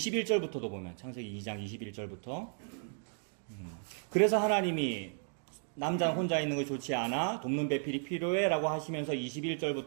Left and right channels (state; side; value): silent; left; 55 dB below the other